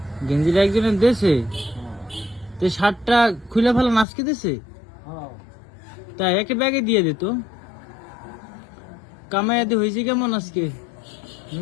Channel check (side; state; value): right; drops out; at 4.0 s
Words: গেঞ্জিটা একজনের দেশে, তো শার্টটা খুলে ফেলা নাচকে দিছে। হ্যাঁ তাই একে ব্যাগে দিয়ে দিত। কামাইয়াদি হয়েছে কেমন আজকে?